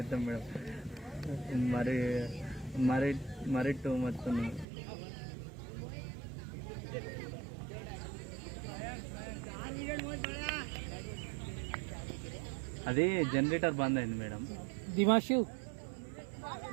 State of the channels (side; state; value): left; drops out; at 4.7 s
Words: మేడం మరి మరి మరి టూ మచ్ ఉంది అది జనరేటర్ బంద్ అయింది మేడం दिमाशु